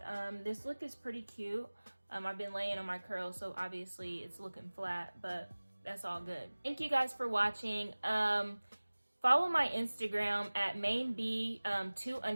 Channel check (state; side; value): inverted; both; correlation -1.00